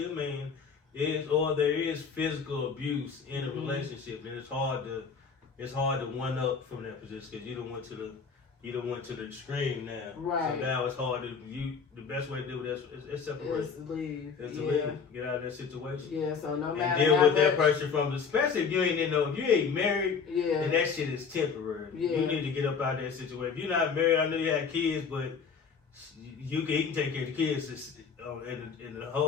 a man, there is physical abuse in a relationship, and it's hard to one up from that position, because you don't went to the extreme now. Right. So now it's hard to the best way to do that is separate. It's leave. Leave. Get out of that situation. Yeah, so no matter and deal how with that much, person especially if you ain't married, then that shit is temporary. Yeah. You need to get up out of that situation. If you're not married, I know you have kids, but he can take care of the kids in a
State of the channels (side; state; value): right; quieter; 5.8 dB